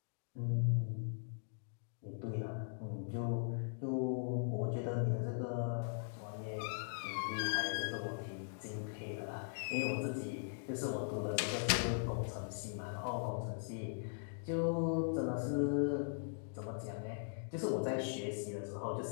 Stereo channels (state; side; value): silent; right; digital silence